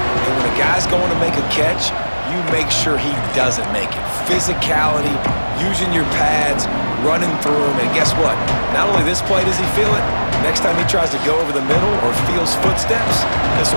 when a guy's going to make a catch, you make sure he doesn't make it. Physicality, using your pads, running through him. And guess what? Not only this play does he feel it, next time he tries to go over the middle or feels footsteps, this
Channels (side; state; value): both; inverted; correlation -1.00